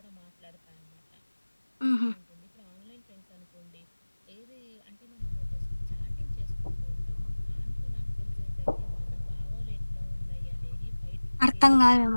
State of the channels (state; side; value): inverted; both; correlation -1.00